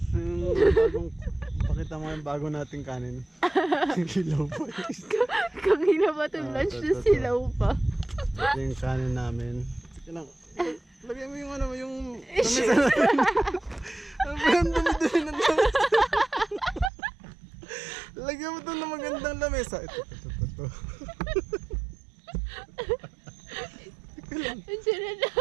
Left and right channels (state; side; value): drops out; left; at 16.9 s